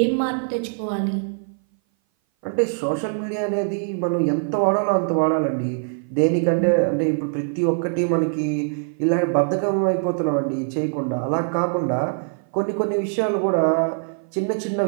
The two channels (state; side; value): silent; left; 58 dB below the other